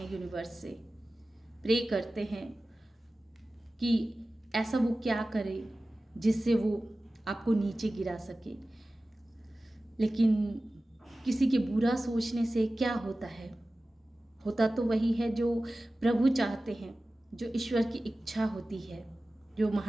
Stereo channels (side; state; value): both; normal; correlation 0.96